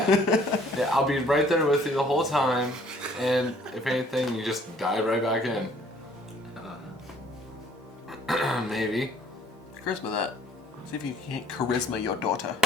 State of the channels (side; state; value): both; normal; correlation 0.58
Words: I'll be right there with you the whole time, and if anything, you just dive right back in. Maybe. Charisma that. See if you can't charisma your daughter.